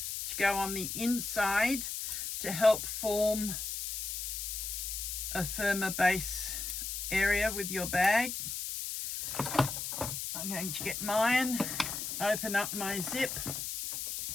to go on the inside to help form a firmer base area with your bag. I'm going to get mine, open up my zip.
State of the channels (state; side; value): noise; left; hiss, 4 dB below the sound